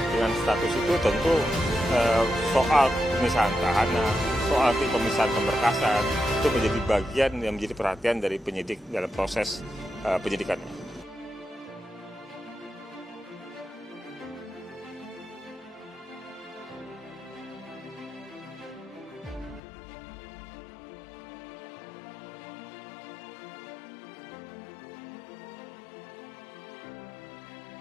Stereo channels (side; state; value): right; drops out; at 19.6 s